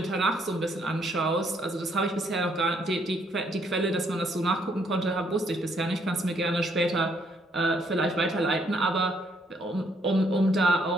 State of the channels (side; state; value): both; normal; correlation 0.69